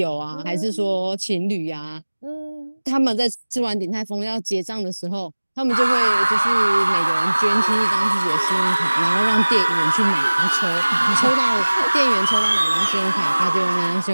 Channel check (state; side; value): inverted; both; correlation -1.00